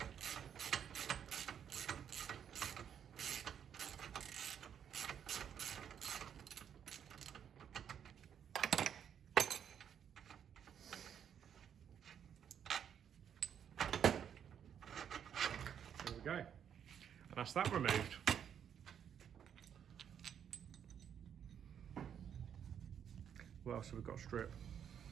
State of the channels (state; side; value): quieter; left; 8.6 dB